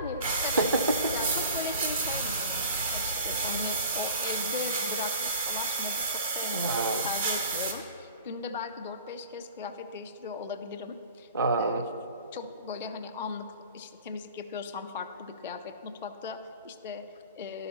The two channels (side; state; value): both; inverted; correlation -0.42